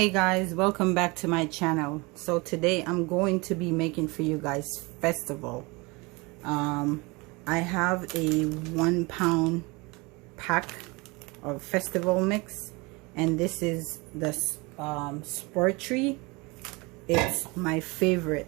guys, welcome back to my channel. So today I'm going to be making for you guys Fistival. I have a 1 pound pack of Fistival mix, and this is the Spur tree. It's my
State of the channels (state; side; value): quieter; left; 26.1 dB